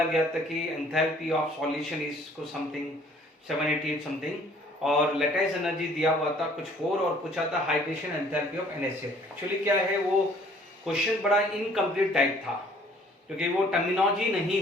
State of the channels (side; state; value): both; normal; correlation 0.57